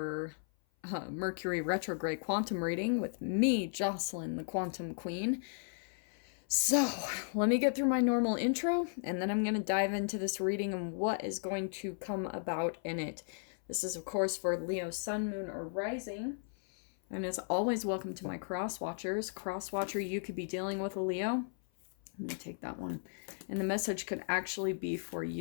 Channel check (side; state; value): right; silent; 54 dB below the other